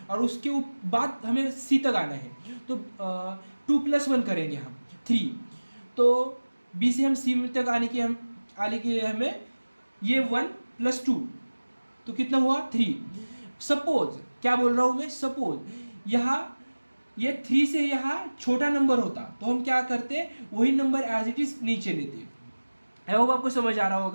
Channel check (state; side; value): inverted; both; correlation -1.00